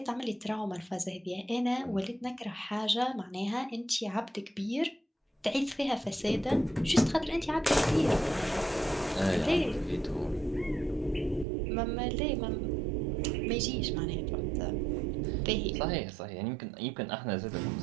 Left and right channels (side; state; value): left; drops out; at 11.5 s